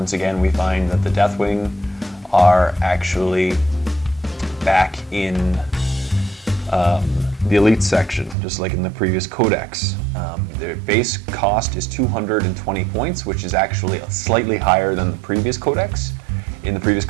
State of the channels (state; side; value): drops out; left; at 8.3 s